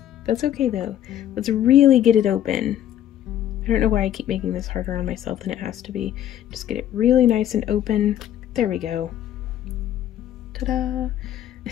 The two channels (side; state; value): right; quieter; 11.3 dB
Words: That's okay though. Let's really get it open. I don't know why I keep making this harder on myself than it has to be. Just get it really nice and open. There we go. Ta-da!